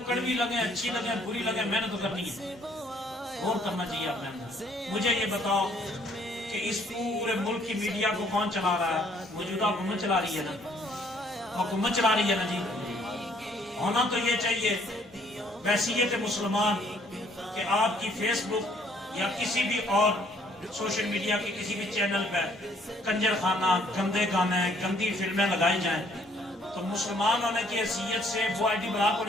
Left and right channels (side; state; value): both; normal; correlation 0.63